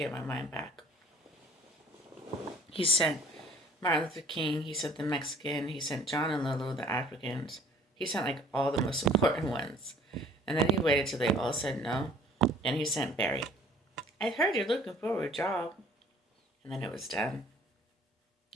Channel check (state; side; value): normal; both; correlation 0.54